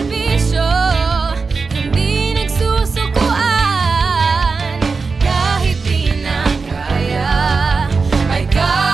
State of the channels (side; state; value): left; quieter; 4.5 dB